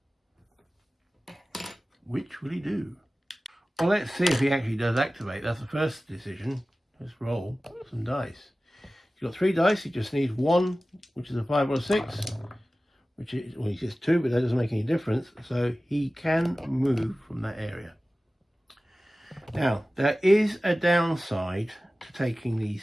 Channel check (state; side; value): normal; both; correlation 0.96